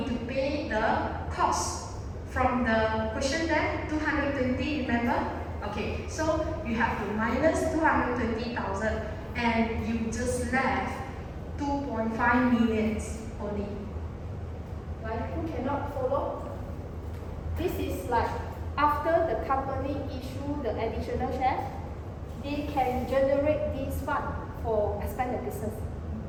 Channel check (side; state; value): both; identical; correlation 1.00